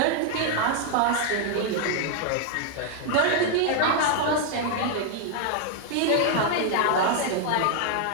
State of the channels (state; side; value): different; both; correlation 0.00